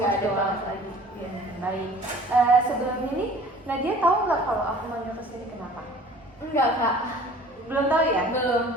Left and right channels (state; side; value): normal; both; correlation 0.48